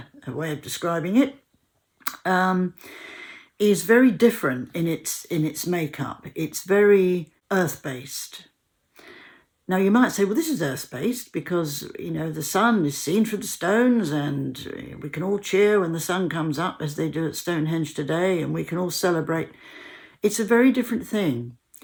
way of describing it, is very different in its makeup. It's very earth-based. Now, you might say, well, this is earth-based because, the sun is seen through the stones, and we can all cheer when the sun comes up, as they do at Stonehenge today, and we can all celebrate. It's a very different thing,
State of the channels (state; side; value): identical; both; correlation 1.00